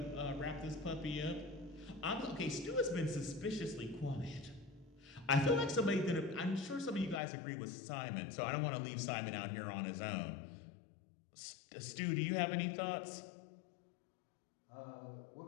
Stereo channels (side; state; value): right; drops out; at 7.2 s